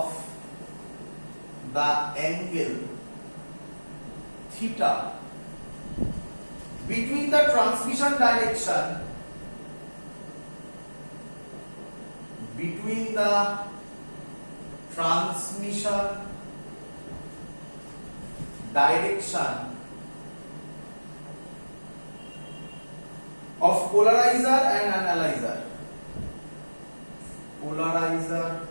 the angle theta between the transmission direction of polarizer and analyzer,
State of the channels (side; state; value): both; inverted; correlation -1.00